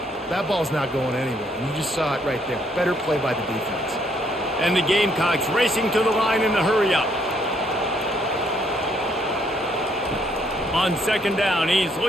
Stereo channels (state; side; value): normal; both; correlation 0.69